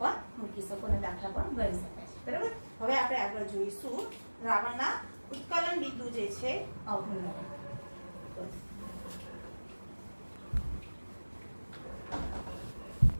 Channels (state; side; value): inverted; both; correlation -1.00